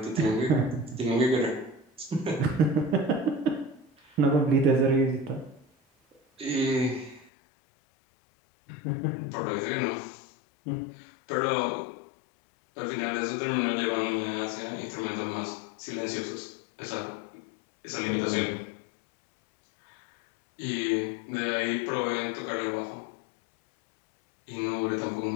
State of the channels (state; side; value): drops out; right; at 7.3 s